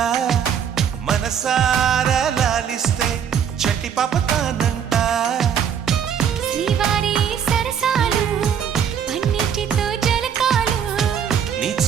మనసారా లాలిస్తే చట్టి పాపతానంట శ్రీవారి సరసాలు పన్నిటితో జలకాలు నీ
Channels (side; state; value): left; quieter; 8.2 dB